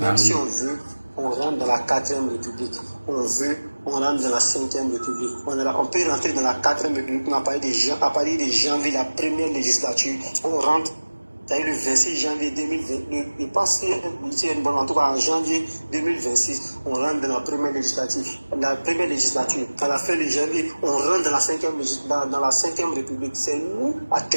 si on veut, on rentre dans la 4e République. On veut, on rentre dans la 5e République. On peut rentrer dans la 4e République à partir de janvier, la première législature. On rentre. C'est le 26 janvier 2020, je pense qu'il y a une bonne, en tout cas en janvier 2026, on rentre dans la première législature. À la fin de janvier, on rentre dans la 5e République. C'est nous,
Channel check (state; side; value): inverted; both; correlation -1.00